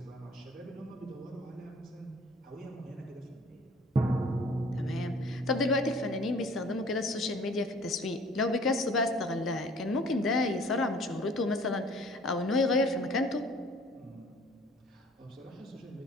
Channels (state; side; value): normal; both; correlation 0.52